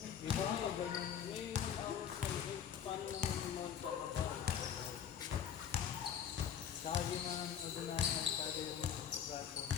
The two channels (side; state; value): right; quieter; 8.6 dB